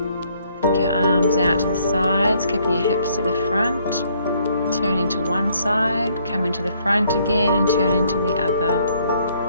Take your arms out to the sides, keeping your hips to the front. Turning to one side, coming to the front again and turning to the other.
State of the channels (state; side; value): inverted; both; correlation -0.66